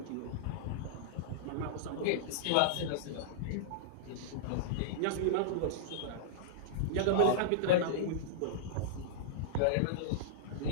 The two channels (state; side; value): different; both; correlation -0.02